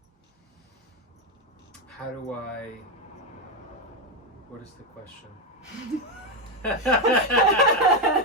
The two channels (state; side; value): normal; both; correlation 0.08